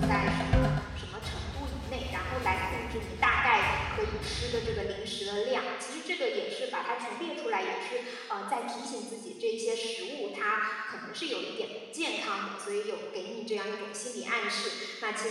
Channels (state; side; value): identical; both; correlation 1.00